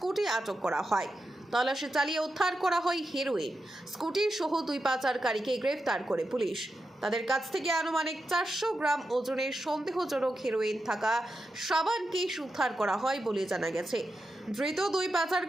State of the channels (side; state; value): both; normal; correlation 0.89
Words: আটক করা হয়। তল্লাশি চালিয়ে উদ্ধার করা হয় হেরোইন। স্কুটি সহ 2 পাচারকারীকে গ্রেফতার করে পুলিশ। তাদের কাছ থেকে আনুমানিক 400 গ্রাম ওজনের সন্দেহজনক হেরোইন থাকা সাবান কেস উদ্ধার করা হয় বলে জানা গেছে। ধৃত 2